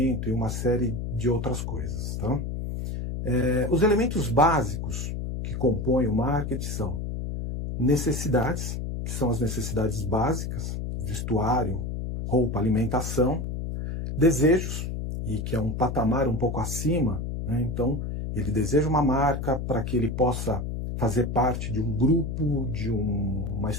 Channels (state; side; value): noise; left; hum, 4 dB below the sound